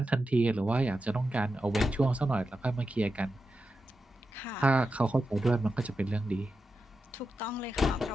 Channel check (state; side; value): normal; both; correlation 0.90